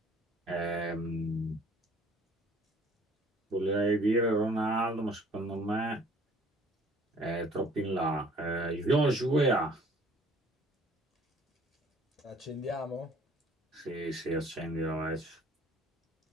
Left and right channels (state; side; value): normal; both; correlation 0.55